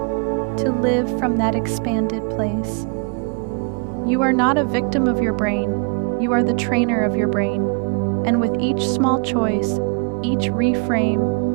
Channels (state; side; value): quieter; left; 36.6 dB